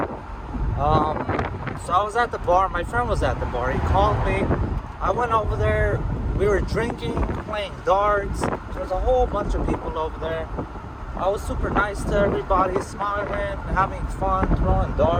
So I was at the bar. My friend was at the bar. He called me. I went over there. We were drinking, playing darts. There was a whole bunch of people over there. I was super nice to everybody, smiling, having fun, throwing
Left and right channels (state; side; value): identical; both; correlation 1.00